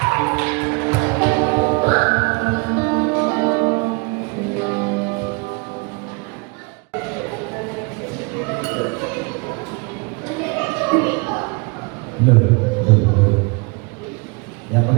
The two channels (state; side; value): quieter; left; 30.7 dB